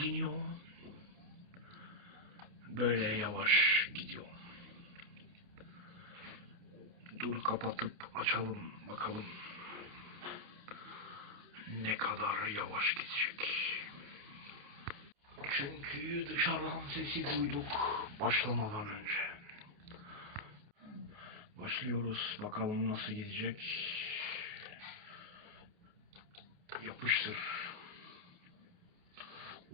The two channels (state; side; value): late; left; 29 ms